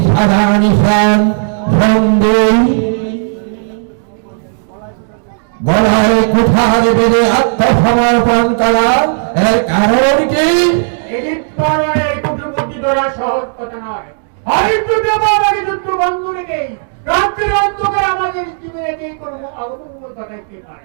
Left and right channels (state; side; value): silent; left; digital silence